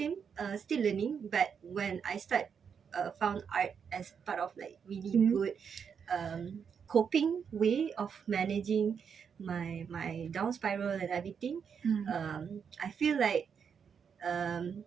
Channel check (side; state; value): left; quieter; 6.9 dB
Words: still learning. But when I found art as part of like really good coping way of managing my down spiral and everything. I feel like